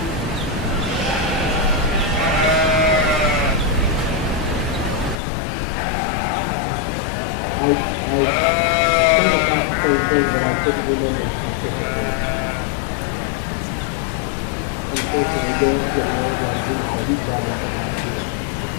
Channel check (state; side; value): drops out; right; at 5.2 s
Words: I think about the same thing, but I couldn't remember specifically. Unfortunately, Dale's getting old like this, so he's got it from out here.